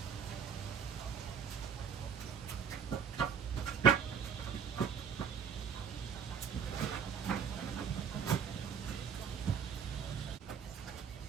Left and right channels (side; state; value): left; quieter; 6.9 dB